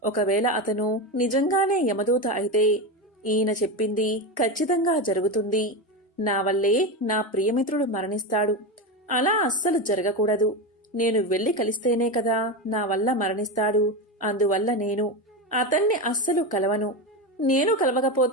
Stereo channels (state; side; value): normal; both; correlation 0.17